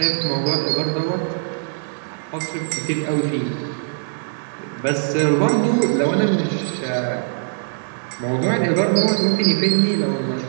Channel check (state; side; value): silent; left; digital silence